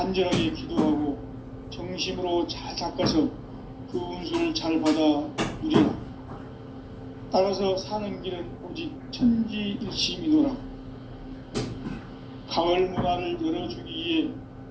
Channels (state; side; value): identical; both; correlation 1.00